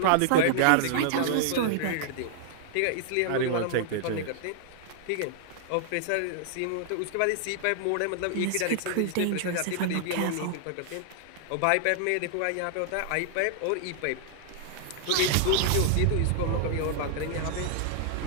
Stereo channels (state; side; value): different; both; correlation -0.01